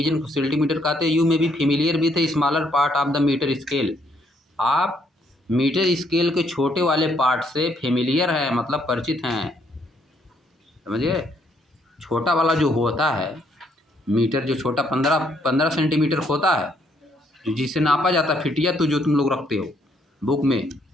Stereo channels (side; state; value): both; normal; correlation 0.71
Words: को सेंटीमीटर कहते हैं। You may be familiar with a smaller part of the metre scale. आप मीटर स्केल के छोटे वाले पार्ट से फेमिलियर है, मतलब परिचित हैं, समझिए। छोटा वाला जो होता है मीटर, जो छोटा 15 सेंटीमीटर होता है, जिससे नापा जाता है फिटिया, तो जो तुम लोग रखते हो बुक में,